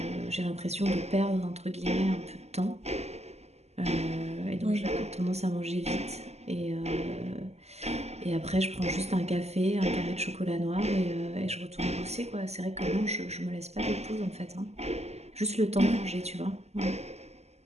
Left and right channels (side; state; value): left; late; 0.31 ms